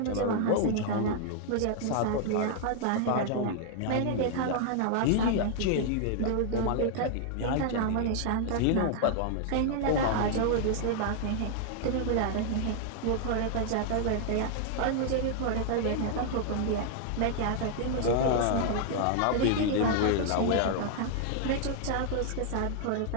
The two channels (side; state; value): both; different; correlation 0.00